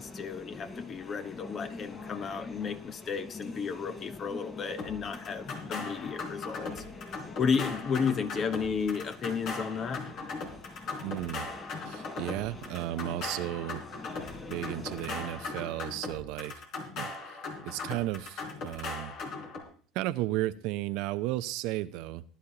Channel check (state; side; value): normal; both; correlation 0.48